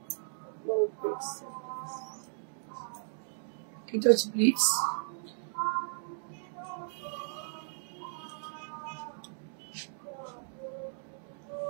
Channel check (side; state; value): left; silent; digital silence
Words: এটা হচ্ছে প্লিটস।